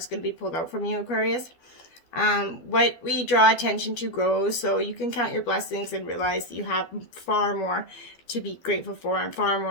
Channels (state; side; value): late; right; 12 ms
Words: going to be pulled out from you, Aquarius. What we draw attention to grows, so you can count your blessings and realize that you have far more to be grateful for and far